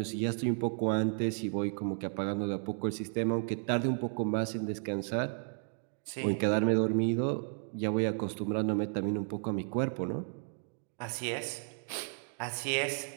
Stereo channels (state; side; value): silent; left; 56 dB below the other